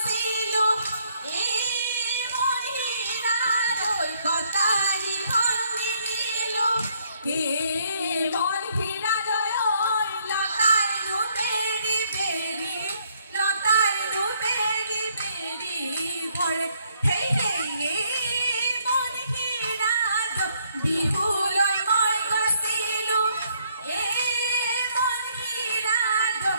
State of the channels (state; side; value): inverted; both; correlation -0.68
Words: কটারি খন্দি নিলো কে মন ফিরা দয় লতাই নু বেরি বেরি লতাই নু বেরি বেরি ভরে হেই হেই মন ফিরা বিহু লৈ মই গৈছিলো মন ফিৰা